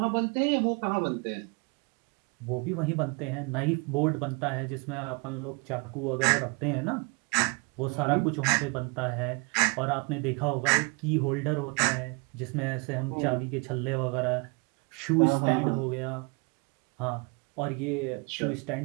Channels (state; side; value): quieter; left; 32.1 dB